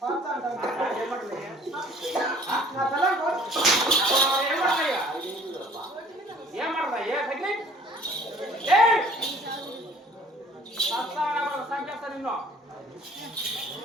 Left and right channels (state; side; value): normal; both; correlation 0.53